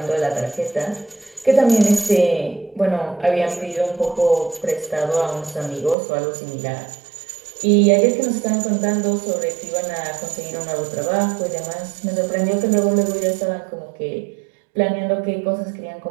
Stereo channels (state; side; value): drops out; left; at 6.0 s